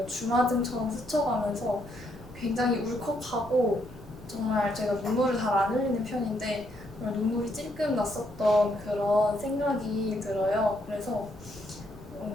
주마등처럼 스쳐가면서 굉장히 울컥하고 정말 제가 눈물을 잘 안 흘리는 편인데 정말 눈물이 찔끔 났었던 그런 생각이 들어요. 그래서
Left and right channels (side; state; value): right; noise; rumble, 19 dB below the sound